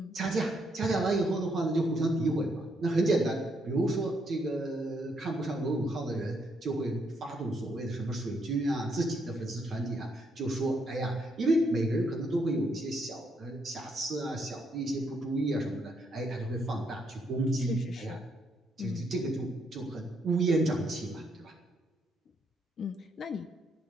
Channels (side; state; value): both; normal; correlation 0.75